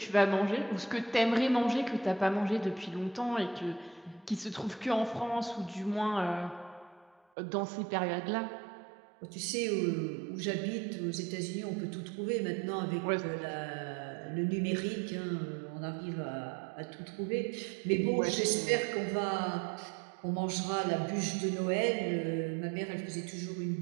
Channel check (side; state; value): left; drops out; at 7.2 s